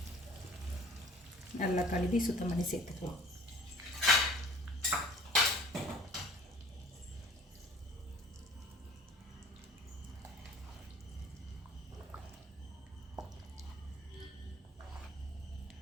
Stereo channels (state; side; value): normal; both; correlation 0.49